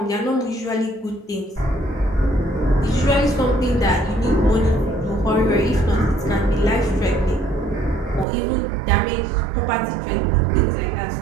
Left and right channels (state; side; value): drops out; left; at 8.2 s